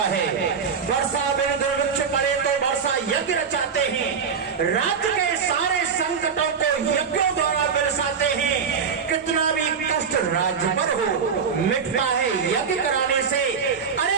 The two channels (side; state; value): left; quieter; 6.3 dB